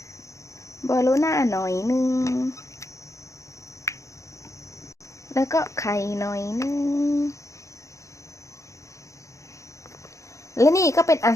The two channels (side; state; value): right; late; 0.15 ms